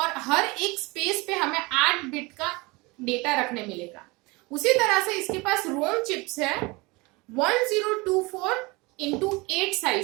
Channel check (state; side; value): quieter; left; 24.7 dB